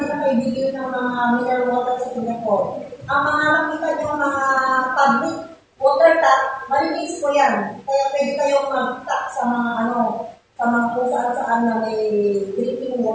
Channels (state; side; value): identical; both; correlation 1.00